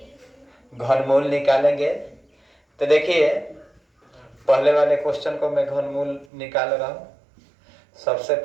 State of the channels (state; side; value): drops out; left; at 6.2 s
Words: घनमूल निकालेंगे। तो देखिए, पहले वाले क्वेश्चन को मैं घनमूल निकाल रहा हूँ। सबसे